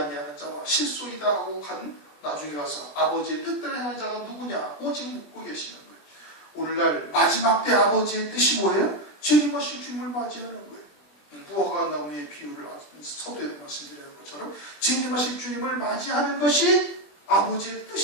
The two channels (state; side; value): late; right; 20 ms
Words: 자와 실소이다 하고 간 나중에 가서 아버지의 뜻대로 행하는 자가 누구냐 오직 묻고 계시는 거예요. 오늘날 마지막 때 아버지의 뜻이 뭐예요? 재림하실 주님을 맞이하는 거예요. 무화과 나무의 비유를 서두에 말씀드리는 것처럼 재림하실 주님을 맞이하는 것이 아버지의